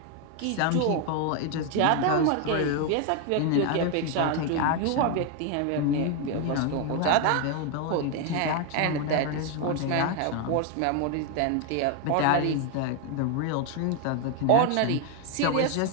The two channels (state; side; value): different; both; correlation 0.01